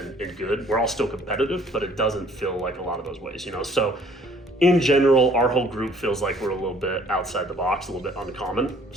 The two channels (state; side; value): normal; both; correlation 0.58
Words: good. We're all still competitive, but it doesn't feel like a lot of those ways, you know. So in general, our whole group feels like we're a little bit outside the box, a little bit uncommon.